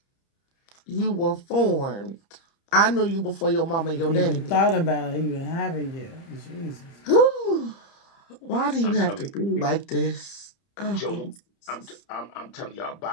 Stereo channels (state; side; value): late; right; 30 ms